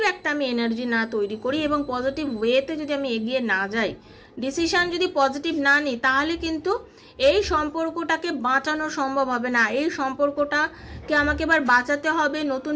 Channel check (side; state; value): both; identical; correlation 1.00